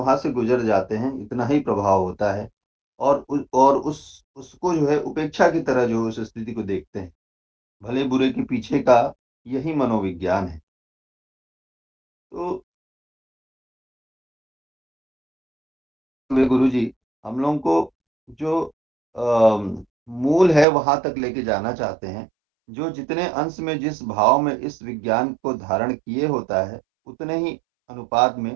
से गुज़र जाते हैं, इतना ही प्रभाव होता है और उसको जो है उपेक्षा की तरह जो उस स्थिति को देखते हैं। भले-बुरे के पीछे का यही मनोविज्ञान है। तो वे गुरुजी हम लोगों को जो मूल है वहाँ तक लेके जाना चाहते हैं। जो जितने अंश में जिस भाव में इस विज्ञान को धारण किए होता है, उतने ही अनुपात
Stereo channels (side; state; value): left; drops out; at 20.7 s